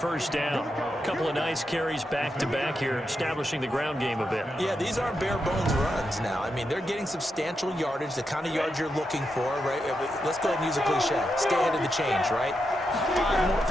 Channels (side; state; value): both; normal; correlation 0.85